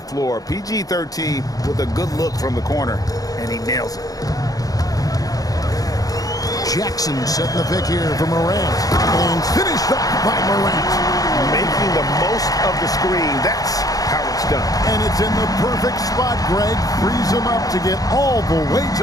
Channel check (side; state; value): right; late; 0.18 ms